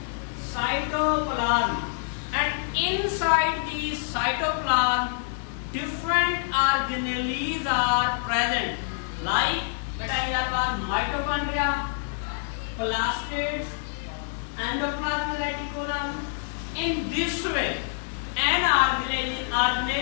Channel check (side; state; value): right; silent; digital silence